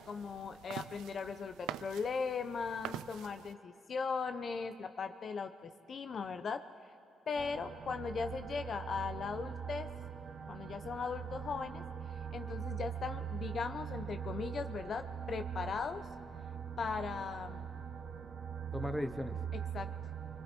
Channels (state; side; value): normal; both; correlation 0.76